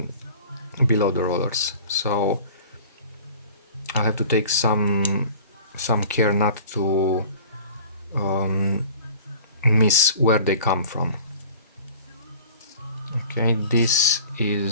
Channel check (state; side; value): inverted; both; correlation -0.45